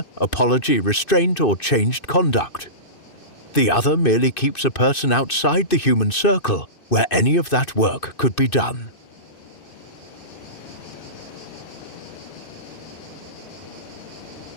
apology, restraint, or changed conduct. The other merely keeps a person outside the human circle where any of that work could be done.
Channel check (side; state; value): right; late; 2.6 ms